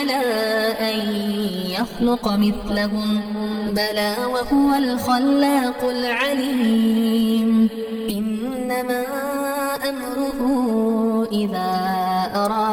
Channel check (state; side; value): identical; both; correlation 1.00